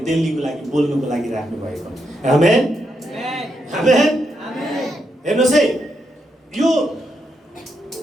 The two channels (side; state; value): both; normal; correlation 0.81